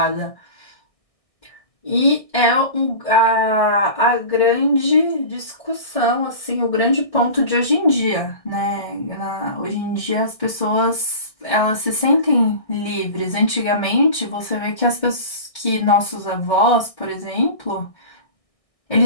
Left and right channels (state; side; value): late; right; 1.6 ms